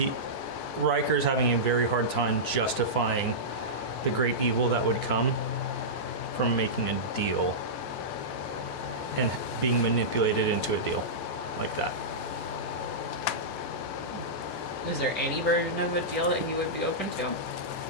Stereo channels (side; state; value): right; late; 14 ms